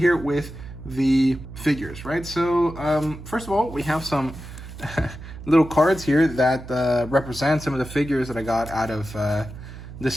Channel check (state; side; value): noise; right; hum, 13 dB below the sound